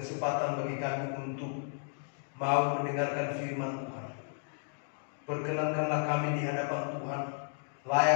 bagi kami untuk mau mendengarkan firman Tuhan. Perkenankanlah kami di hadapan Tuhan,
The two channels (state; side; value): silent; right; 56 dB below the other